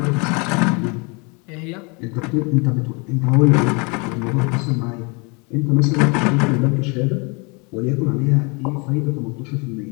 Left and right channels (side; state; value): right; quieter; 30.9 dB